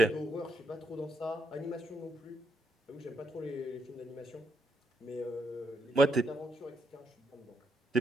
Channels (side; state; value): both; normal; correlation 0.79